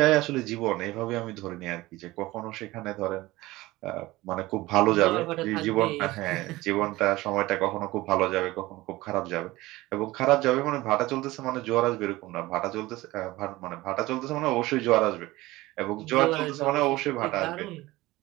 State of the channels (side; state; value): left; quieter; 18.9 dB